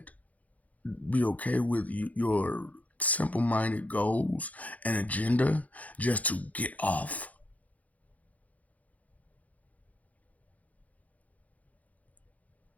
Be okay with your simple minded goals and agenda just to get off?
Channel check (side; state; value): right; late; 0.073 ms